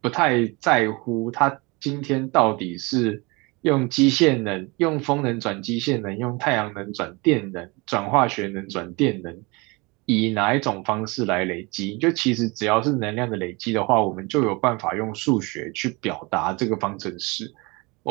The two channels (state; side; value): quieter; left; 26.7 dB